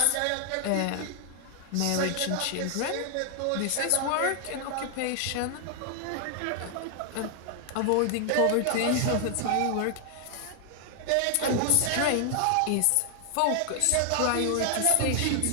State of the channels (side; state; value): both; different; correlation 0.00